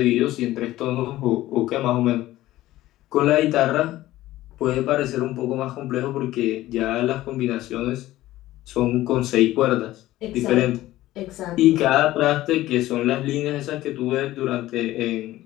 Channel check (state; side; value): quieter; right; 15.8 dB